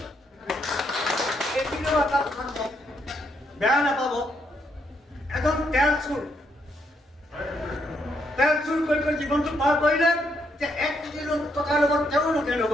এইখিনিও এটা কথা বেয়া নাপাব, এজন তেল চুৰ কৰি জীৱনটো পাৰ কৰিলে, যে 1 কোটি টকাৰ লগত তেওঁ নগেন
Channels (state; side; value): normal; both; correlation 0.75